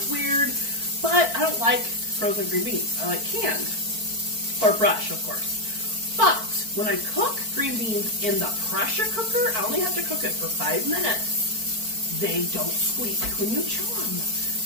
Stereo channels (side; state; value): left; late; 4.5 ms